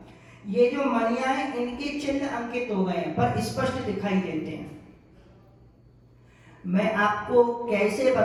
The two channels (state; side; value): identical; both; correlation 1.00